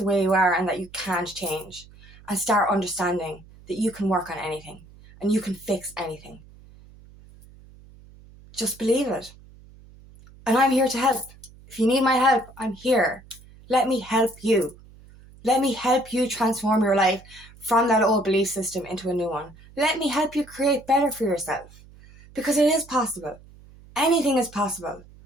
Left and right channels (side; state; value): right; noise; hum, 23 dB below the sound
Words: way you are and that you can't change, and start understanding that you can work on anything and you can fix anything. Just believe it. And I'm here to help. If you need my help, I'm here. Let me help you. Let me help you transform your life from that old belief system into a new one. Let me help you create better for yourself, because it is possible. Anything is possible.